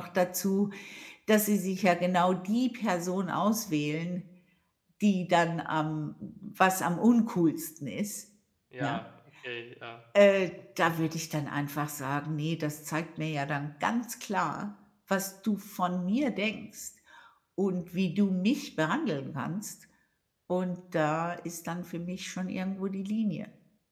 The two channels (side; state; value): both; identical; correlation 1.00